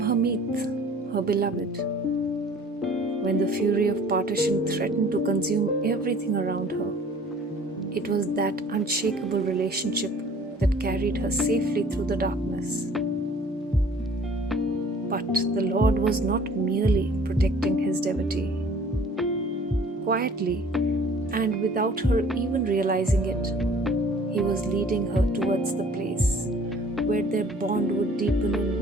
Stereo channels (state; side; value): normal; both; correlation 0.51